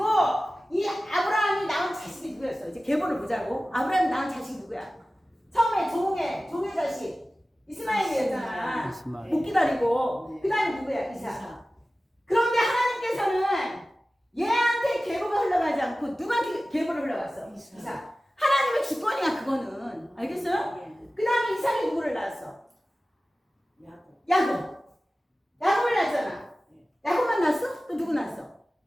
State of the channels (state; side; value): normal; both; correlation 0.96